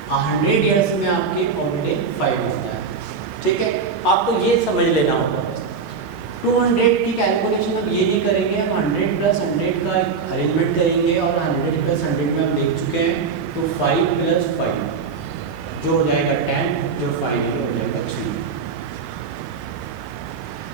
100 ईयर्स में आपके ऑलरेडी 5 होता है, ठीक है। आपको ये समझ लेना होगा बस। 200 की कैलकुलेशन अब ये नहीं करेंगे, हम 100 + 100 का एक अरेंजमेंट करेंगे और 100 + 100 में हम देख चुके हैं, तो 5 + 5 जो हो जाएगा 10, जो फाइनली हो जाएगा 3।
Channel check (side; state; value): left; quieter; 5.3 dB